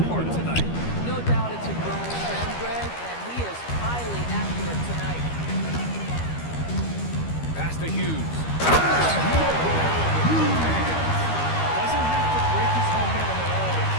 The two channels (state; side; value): late; right; 13 ms